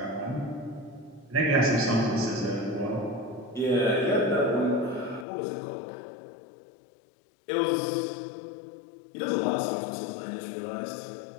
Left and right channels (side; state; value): right; drops out; at 5.2 s